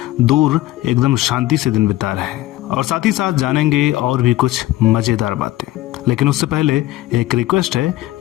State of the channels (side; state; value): right; quieter; 16.2 dB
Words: दूर एकदम शांति से दिन बिता रहे हैं, और साथ ही साथ जानेंगे और भी कुछ मजेदार बातें। लेकिन उससे पहले एक रिक्वेस्ट है